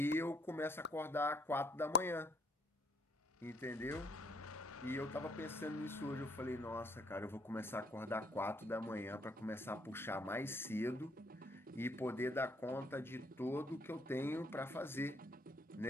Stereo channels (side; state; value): both; normal; correlation 0.66